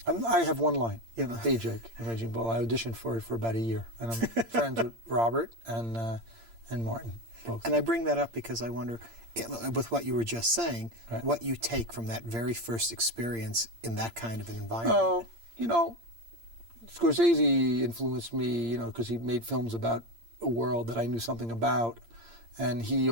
I have one line, Hey Jake, in Raging Bull. I auditioned for it for about a year, and I'm friends with Robert and Martin, both. And I bring that up because I wonder, with what you were just saying, what you take from that very first experience in that kind of an environment. Oh, Scorsese influenced me, because he made films about a world that I knew something about, and he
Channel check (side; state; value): left; late; 8.7 ms